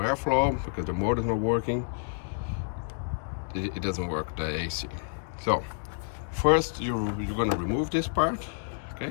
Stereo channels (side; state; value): right; silent; digital silence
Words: because the motor is not working, it doesn't work, the AC. So first you're going to remove this part,